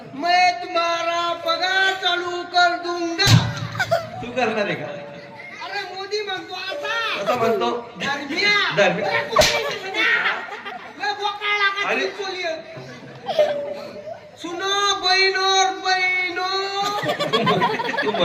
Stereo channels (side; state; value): both; identical; correlation 1.00